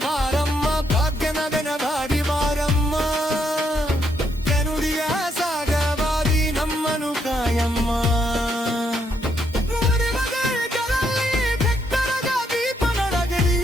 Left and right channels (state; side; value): normal; both; correlation 0.76